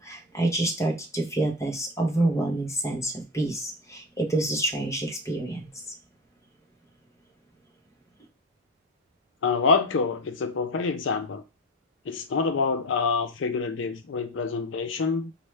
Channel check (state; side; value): normal; both; correlation 0.21